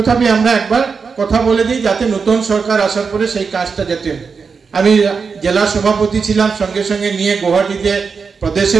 আমরা একবার কথা বলে দিই যাতে নতুন সরকার আসার পরে সেই কাজটা যেতে। আমি জেলা সভাপতি ছিলাম, সঙ্গে সঙ্গে নিয়ে গুয়াহাটিতে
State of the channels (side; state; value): left; quieter; 5.3 dB